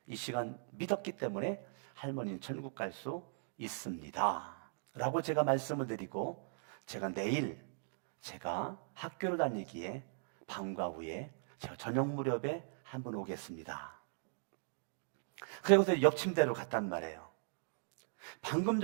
이 시간 믿었기 때문에 할머니는 천국 갈 수 있습니다 라고 제가 말씀을 드리고 제가 내일 제가 학교를 다니기에 방과 후에 제가 저녁 무렵에 한번 오겠습니다. 그리고서 옆 침대로 갔단 말이에요. 방금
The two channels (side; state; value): left; silent; digital silence